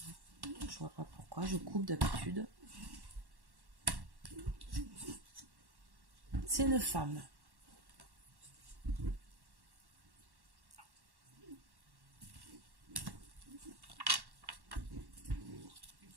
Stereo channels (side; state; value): left; late; 1.1 ms